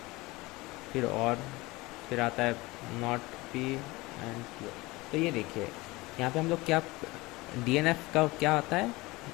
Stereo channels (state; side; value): quieter; right; 21.8 dB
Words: फिर और फिर आता है नॉट P एंड Q। तो ये देखिए यहाँ पे हम लोग क्या DNF का क्या आता है,